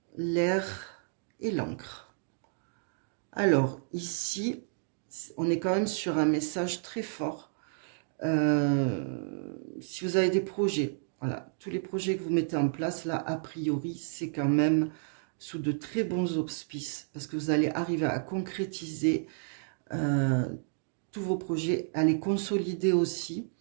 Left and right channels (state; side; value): silent; left; digital silence